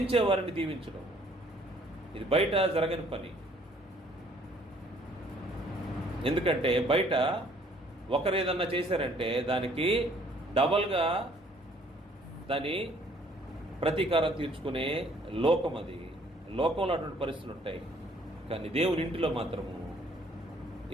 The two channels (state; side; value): normal; both; correlation 0.60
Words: వారిని దీవించడం ఇది బయట జరగని పని. ఎందుకంటే బయట ఒకరు ఏదన్నా చేశారంటే దానికి డబల్గా దాని ప్రతీకారం తీర్చుకునే లోకం అది. లోకంలో అటువంటి పరిస్థితులు ఉంటాయి. కానీ దేవుని ఇంటిలో మాత్రము